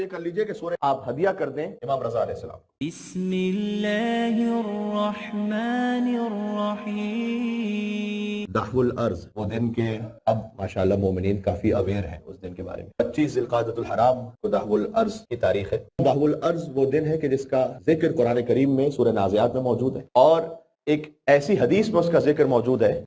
کر لیجئے کہ سورہ آپ ہدیہ کر دیں امام رضا علیہ السلام. بسم اللہ الرحمن الرحیم. دحو الارض، وہ دن کے اب ماشاءاللہ مومنین کافی اویئر ہیں اس دن کے بارے میں. 25 ذی القعدۃ الحرام کو دحو الارض کی تاریخ ہے. دحو الارض وہ دن ہے کہ جس کا ذکر قرآن کریم میں سورہ نازعات میں موجود ہے، اور ایک ایسی حدیث میں اس کا ذکر موجود ہے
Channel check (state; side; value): identical; both; correlation 1.00